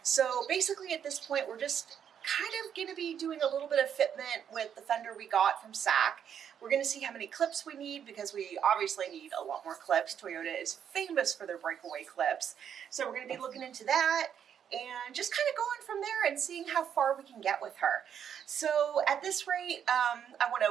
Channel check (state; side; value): quieter; left; 8.6 dB